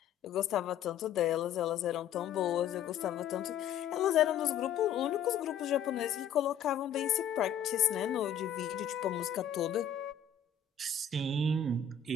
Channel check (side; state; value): right; quieter; 7.7 dB